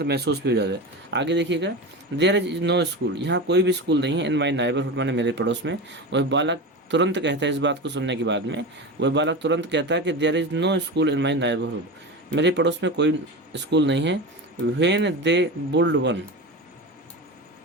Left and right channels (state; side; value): normal; both; correlation 0.25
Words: महसूस भी हो जाता है। आगे देखिएगा, देयर इज नो स्कूल, यहाँ कोई भी स्कूल नहीं है। इन माई नाइबरहुड, मैंने मेरे पड़ोस में। वह बालक तुरंत कहता है, इस बात को सुनने के बाद में वह बालक तुरंत कहता है कि there is no school in my neighbourhood, मेरे पड़ोस में कोई स्कूल नहीं है। When they build one